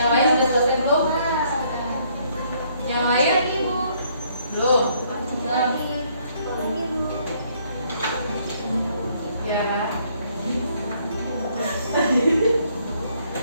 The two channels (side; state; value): both; inverted; correlation -0.67